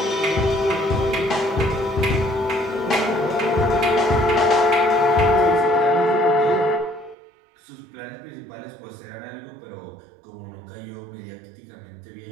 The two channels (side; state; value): left; drops out; at 7.2 s